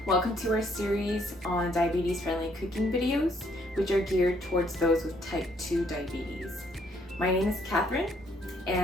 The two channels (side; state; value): both; normal; correlation 0.68